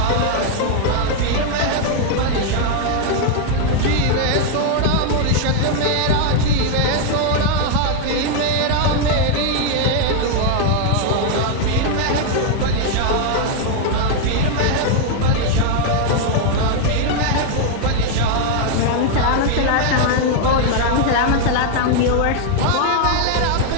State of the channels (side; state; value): both; different; correlation 0.00